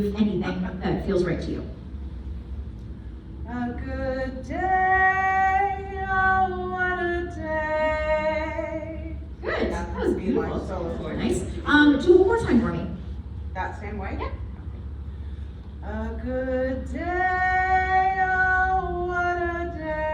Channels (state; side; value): identical; both; correlation 1.00